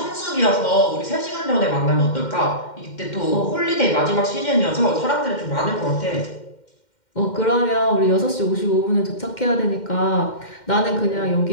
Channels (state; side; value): late; right; 2.1 ms